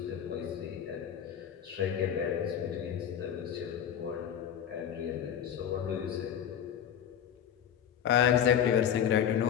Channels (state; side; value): quieter; right; 9.1 dB